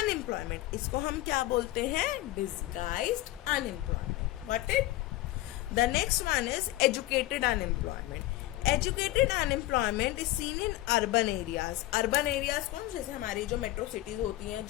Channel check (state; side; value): quieter; right; 16.8 dB